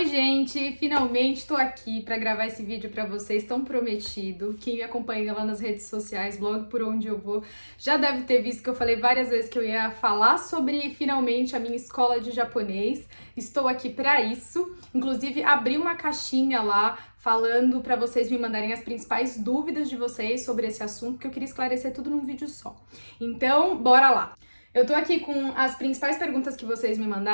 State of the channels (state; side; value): inverted; both; correlation -1.00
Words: gente! Finalmente estou aqui para gravar esse vídeo para vocês, tão prometido. Quem me acompanha lá nas redes sociais, blog Por Onde Eu Vou, já deve ter visto que eu falei várias vezes que eu ia falar sobre, finalmente, a minha escola de japonês. Estou aqui para isso. Inclusive, abri uma caixinha lá falando para vocês me mandarem as principais dúvidas de vocês sobre esse assunto, porque eu queria esclarecer tudo num vídeo só. Então, bora lá! Eu tô aqui com as principais perguntas que vocês me